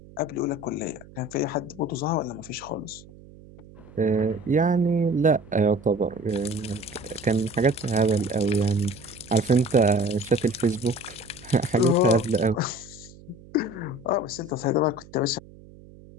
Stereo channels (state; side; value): noise; right; hum, 21 dB below the sound